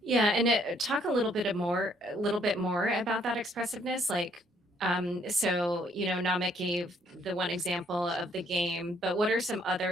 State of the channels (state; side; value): normal; both; correlation 0.66